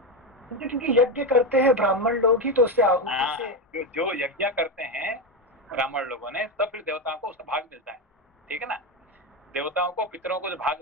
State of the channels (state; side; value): normal; both; correlation 0.13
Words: क्योंकि यज्ञ करते हैं ब्राह्मण लोग ही, तो उससे आहुति से जो यज्ञ करते हैं ब्राह्मण लोगों ने, तब फिर देवताओं को उसका भाग मिलता है। ठीक है ना? देवताओं को, पितरों को जो भाग